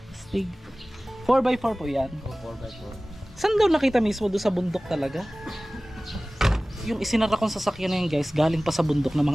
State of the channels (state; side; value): normal; both; correlation 0.98